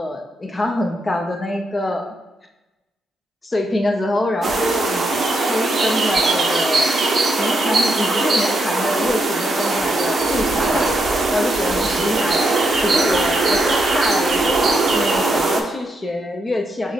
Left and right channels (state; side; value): normal; both; correlation 0.80